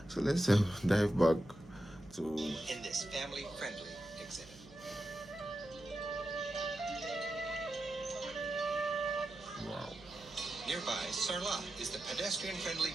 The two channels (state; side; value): noise; right; hum, 20 dB below the sound